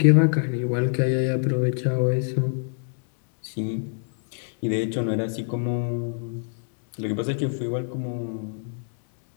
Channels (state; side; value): silent; right; digital silence